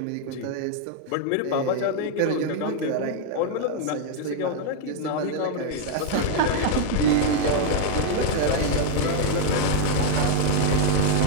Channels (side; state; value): both; different; correlation 0.00